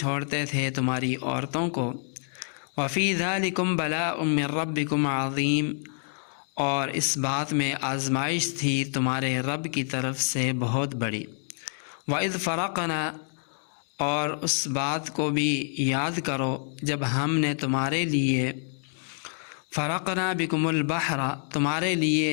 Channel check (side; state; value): right; silent; 60 dB below the other